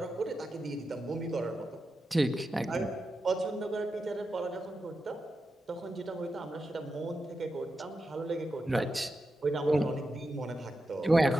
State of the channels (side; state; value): both; normal; correlation 0.89